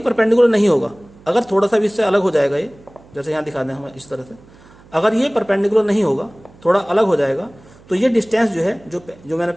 परपेंडिकुलर नहीं होगा, अगर थोड़ा सा भी इससे अलग हो जाएगा, ये जैसे यहाँ दिखा दें हम इस तरह से, अगर ये परपेंडिकुलर नहीं होगा, थोड़ा अलग हो जाएगा, तो ये डिस्टेंस जो है जो मैंने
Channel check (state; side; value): noise; right; hum, 25 dB below the sound